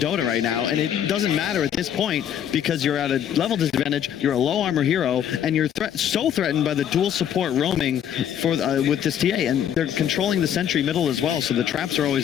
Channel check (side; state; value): right; quieter; 9.6 dB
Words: right now, and it doesn't matter at this point because you're at a level disadvantage, you're a low armor hero, and you're so threatened by the dual support roaming for with this TA, and they're controlling the sentry middle as well, so the traps are